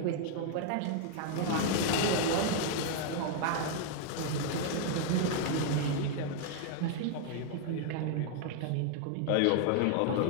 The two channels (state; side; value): different; both; correlation 0.00